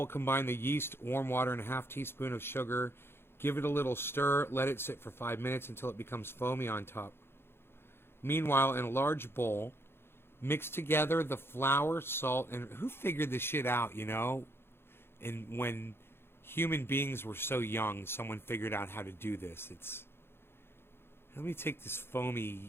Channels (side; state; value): right; late; 0.11 ms